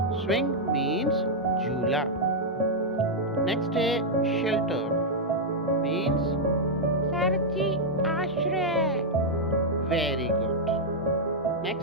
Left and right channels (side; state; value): both; normal; correlation -0.04